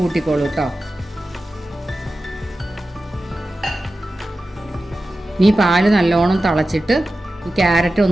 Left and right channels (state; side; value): normal; both; correlation 0.94